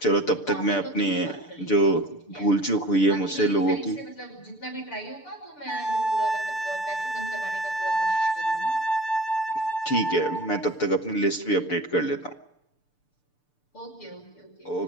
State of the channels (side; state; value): right; late; 6.8 ms